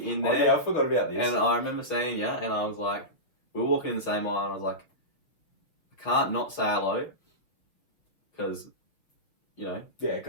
in there. Oh yeah, I forgot about this. And I remember seeing you, and I was like, we were walking in the same aisle, and I was like, I can't not say hello, because, you know. Yeah,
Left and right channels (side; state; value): right; late; 6.1 ms